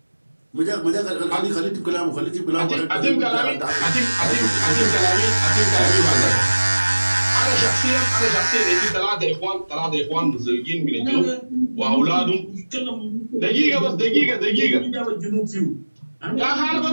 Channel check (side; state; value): both; inverted; correlation -1.00